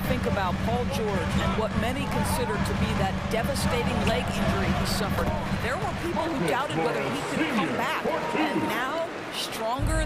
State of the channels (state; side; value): identical; both; correlation 1.00